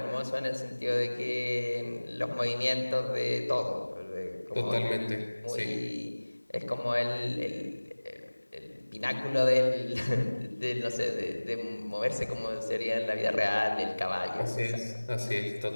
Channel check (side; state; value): both; inverted; correlation -1.00